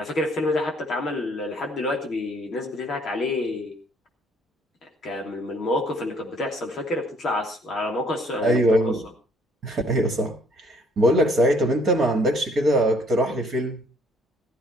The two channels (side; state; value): both; normal; correlation 0.62